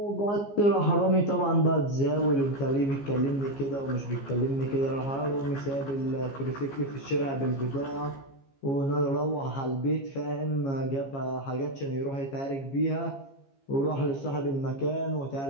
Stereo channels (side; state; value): right; late; 15 ms